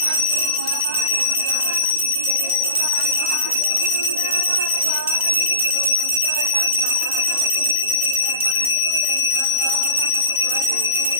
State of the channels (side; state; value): both; inverted; correlation -0.37